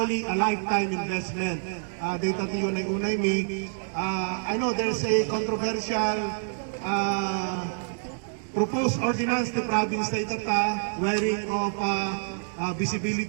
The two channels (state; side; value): silent; left; digital silence